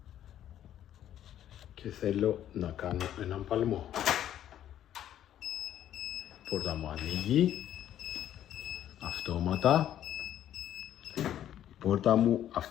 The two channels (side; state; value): right; quieter; 11.2 dB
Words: Και θέλω να κάνω έναν παλμό. Η πόρτα μου ανοίγει. Αυτόματα. Η πόρτα μου